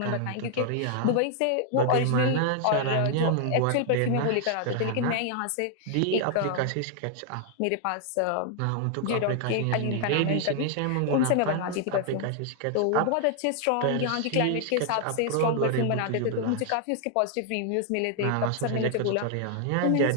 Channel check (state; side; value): different; both; correlation 0.00